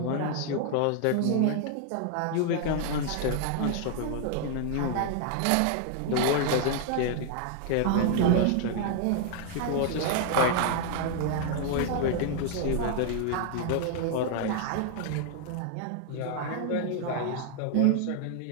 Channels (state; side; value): different; both; correlation 0.00